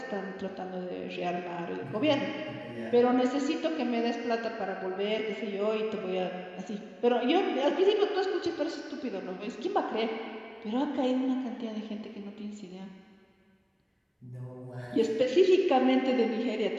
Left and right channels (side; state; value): both; identical; correlation 1.00